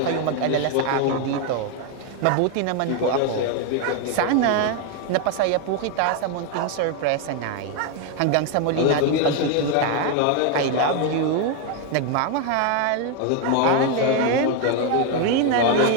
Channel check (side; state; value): both; different; correlation 0.01